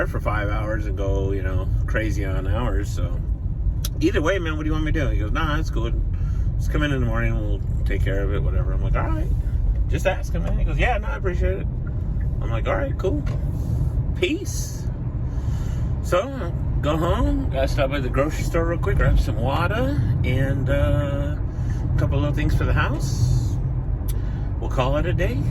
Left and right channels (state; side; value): identical; both; correlation 1.00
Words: for 5 hours and go, crazy on hours. So either way, man, what do you want me to do? He goes, nah, it's good. Just come in the morning, we'll take care of it, whatever. I'm like, all right. Just ask him, man. He goes, yeah, no, I appreciate it. I'm like, all right, cool. Peace. So, go home. Gotta stop by the grocery store real quick, grab some water, and a couple of little things for the house. call it a day?